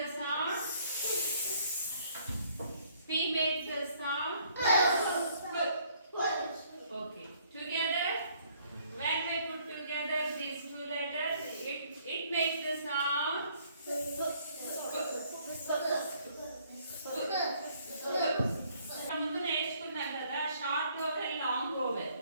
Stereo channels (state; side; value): inverted; both; correlation -0.63